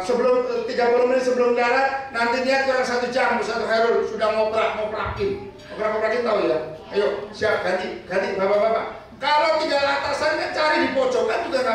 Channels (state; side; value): identical; both; correlation 1.00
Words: sebelum 30 menit sebelum mendarat, nanti dia kurang 1 jam Ustaz Khairul sudah ngoprakin tahu ya. Ayo siap ganti bapak-bapak. Kalau tinggal atasan kan cari di pojokan juga